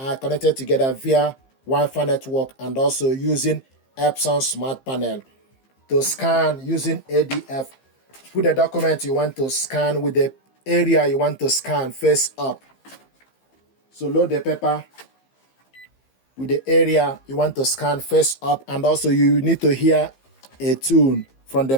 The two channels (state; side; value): late; right; 15 ms